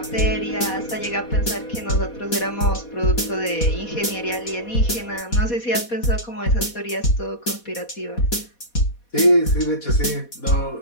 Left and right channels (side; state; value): right; late; 4.2 ms